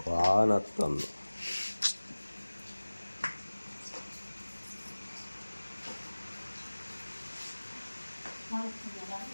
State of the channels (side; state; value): both; inverted; correlation -1.00